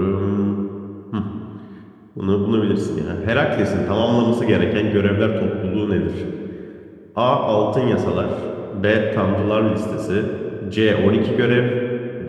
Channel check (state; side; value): identical; both; correlation 1.00